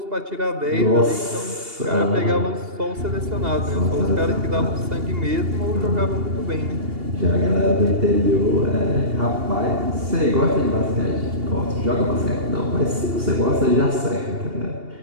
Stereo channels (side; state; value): left; late; 2.8 ms